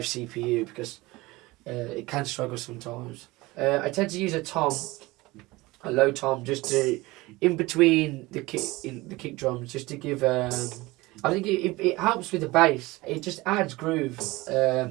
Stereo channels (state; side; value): quieter; left; 21.0 dB